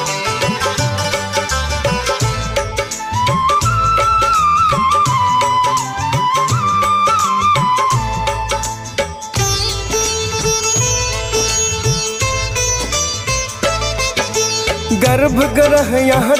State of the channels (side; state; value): both; identical; correlation 1.00